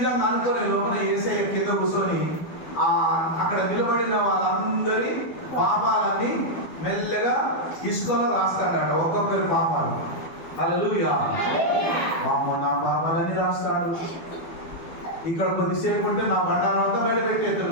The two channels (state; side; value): late; right; 12 ms